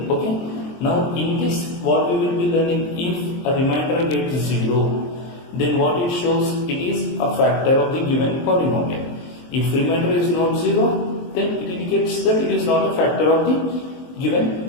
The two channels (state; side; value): late; right; 23 ms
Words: Okay, now in this what we will be learning, if a remainder gets 0, then what it shows, it is a factor of the given polynomial. If remainder is not 0, then it indicates that it is not a factor of the